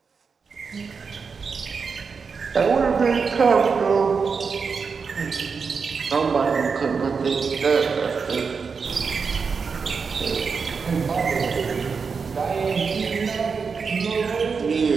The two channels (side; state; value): left; quieter; 5.4 dB